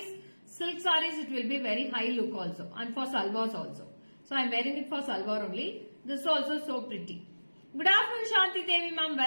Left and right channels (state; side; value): inverted; both; correlation -1.00